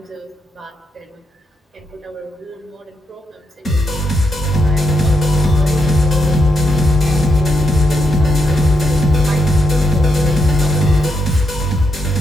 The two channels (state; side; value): normal; both; correlation 0.80